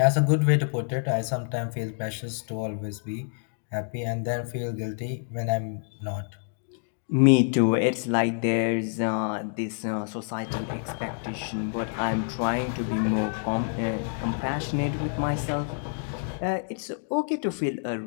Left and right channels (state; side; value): silent; right; 60 dB below the other